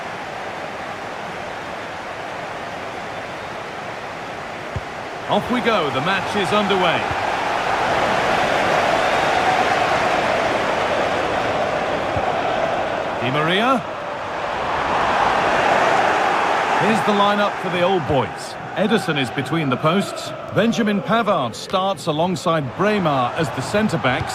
Off we go, the match is underway. Di Maria. Here's the lineup for the old boys. Ederson is between the posts. Benjamin Pavard starts alongside Braemar as the centre-backs.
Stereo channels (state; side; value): identical; both; correlation 1.00